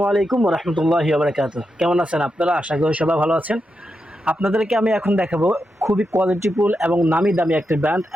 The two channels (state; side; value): normal; both; correlation 0.86